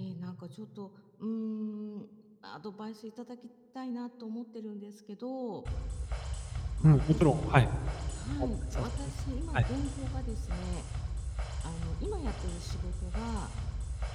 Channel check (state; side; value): identical; both; correlation 1.00